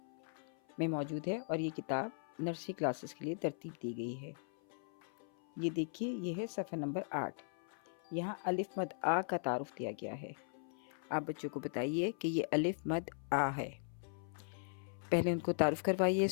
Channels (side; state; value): right; silent; 52 dB below the other